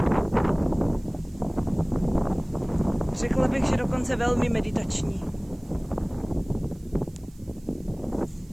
Řekla bych, že dokonce velmi meditační.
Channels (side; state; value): right; noise; hiss, 29 dB below the sound